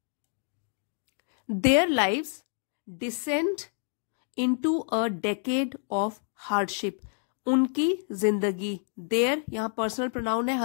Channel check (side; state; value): right; silent; 59 dB below the other